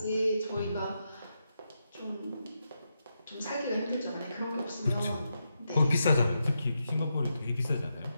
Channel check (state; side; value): inverted; both; correlation -0.85